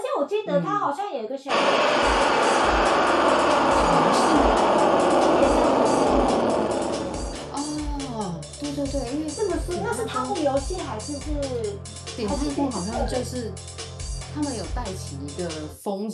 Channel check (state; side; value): identical; both; correlation 1.00